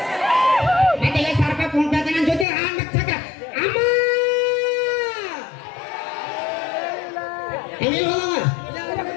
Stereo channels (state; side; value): drops out; right; at 2.5 s